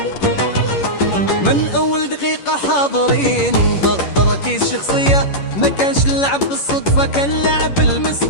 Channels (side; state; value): right; late; 11 ms